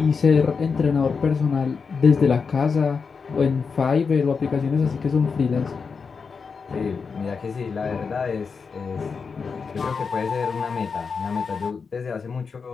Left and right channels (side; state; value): right; quieter; 5.4 dB